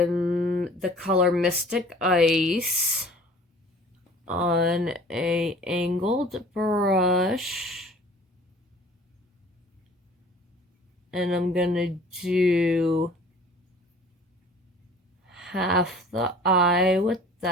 color Mystic Ice on a angled brush, and I'm gonna do half the eye with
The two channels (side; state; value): both; normal; correlation 0.48